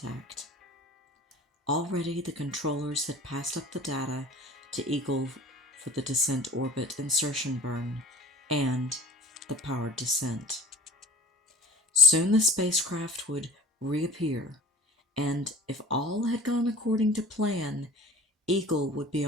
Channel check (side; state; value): both; normal; correlation 0.45